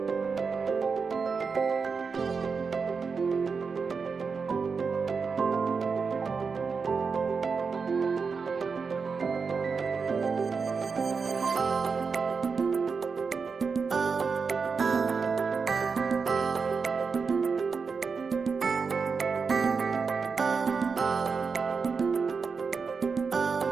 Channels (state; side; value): quieter; left; 5.2 dB